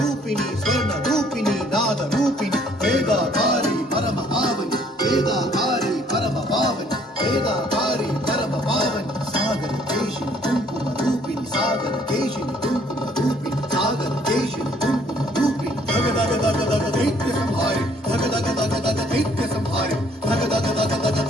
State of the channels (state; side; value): normal; both; correlation 0.62